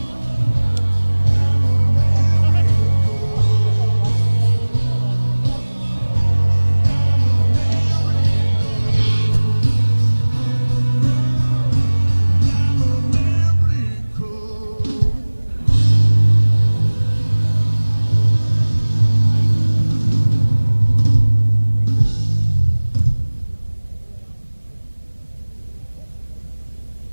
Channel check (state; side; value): inverted; both; correlation -1.00